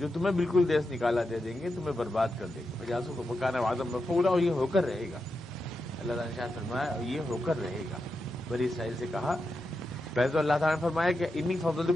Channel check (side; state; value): both; normal; correlation 0.88